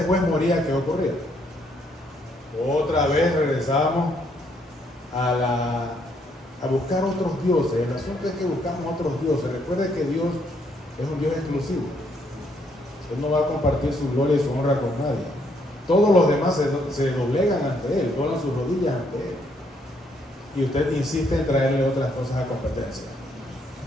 juez moría, ¿qué ocurría? Otra vez regresábamos a buscar otros dioses. El asunto es que buscamos otros dioses. Recuerde que Dios es un Dios exclusivo. Él no va a compartir su gloria y su honra con nadie. Todos los demás se doblegan ante Él, doblan sus rodillas ante Él. y usted insiste en traerle otras cosas a competencia.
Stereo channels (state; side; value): normal; both; correlation 0.71